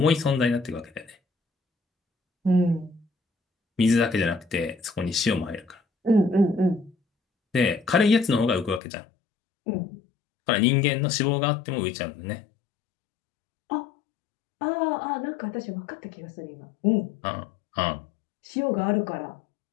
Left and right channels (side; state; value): right; drops out; at 8.8 s